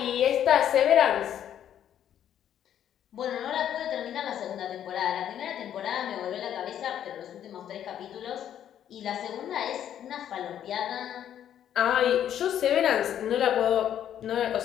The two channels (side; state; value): right; quieter; 10.2 dB